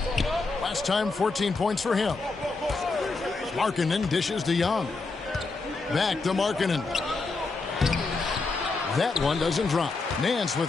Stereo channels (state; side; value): quieter; right; 3.9 dB